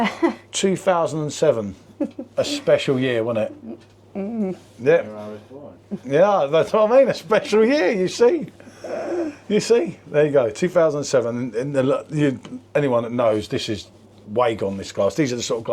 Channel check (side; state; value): both; identical; correlation 1.00